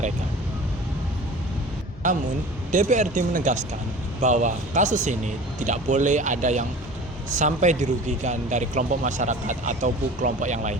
Namun, DPRD menegaskan bahwa kasus ini tidak boleh ada yang sampai dirugikan dari kelompok masyarakat ataupun kelompok yang lain.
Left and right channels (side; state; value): both; normal; correlation 0.40